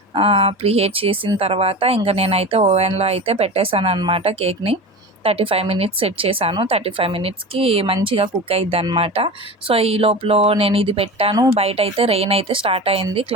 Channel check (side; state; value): both; normal; correlation 0.29